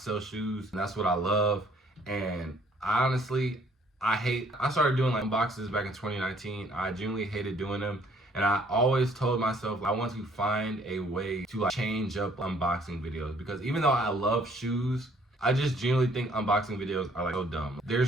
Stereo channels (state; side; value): normal; both; correlation 0.61